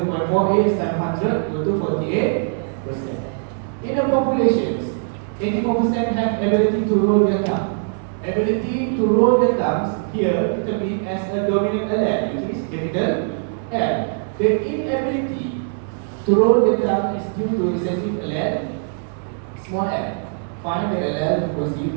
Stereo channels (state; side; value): silent; left; digital silence